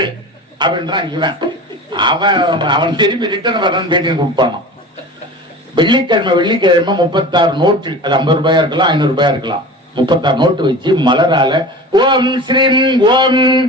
அப்படின்றான் இவன். அவன் திரும்பி ரிட்டர்ன் வரணும்னு பேட்டி கொடுப்பானோ. வெள்ளிக்கிழமை 36 நோட்டு, அது 50 ரூபாயா இருக்கலாம், 500 ரூபாயா இருக்கலாம். 36 நோட்டு வச்சு மலரால ஓம் ஸ்ரீம் ஓம்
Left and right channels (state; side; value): normal; both; correlation 0.35